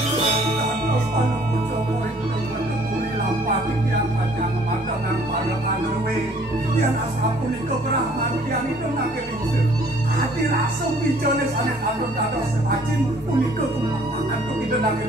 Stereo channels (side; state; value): both; normal; correlation 0.58